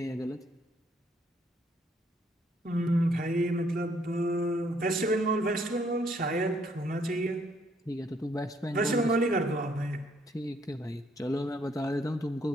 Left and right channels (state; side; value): normal; both; correlation 0.68